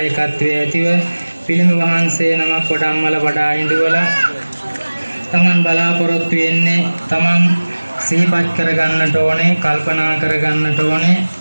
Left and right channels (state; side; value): inverted; both; correlation -1.00